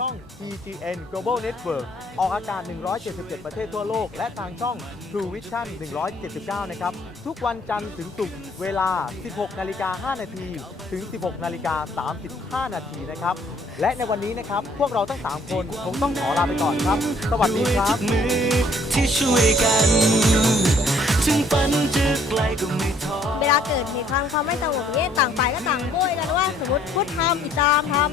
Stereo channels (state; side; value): normal; both; correlation 0.62